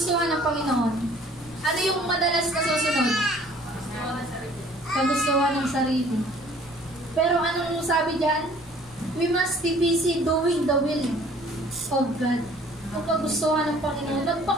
ng Panginoon? Ano yung madalas nasusunod? Kagustuhan ng sarili. Pero anong sabi dyan? We must be busy doing the will of God. Ang kagustuhan ng Panginoon.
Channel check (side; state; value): left; noise; rumble, 24 dB below the sound